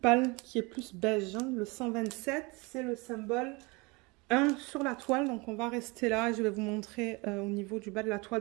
qui est plus beige, hein, le 127, c'est le symbole 1 sur la toile. Donc, on va rester là. Je vais vous montrer au niveau du bas de la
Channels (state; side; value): quieter; left; 26.7 dB